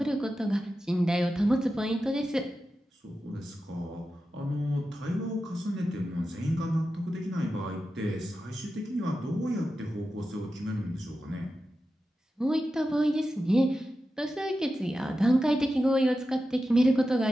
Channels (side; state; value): both; normal; correlation 0.91